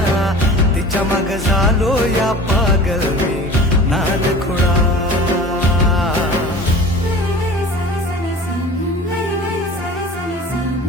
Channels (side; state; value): both; normal; correlation 0.40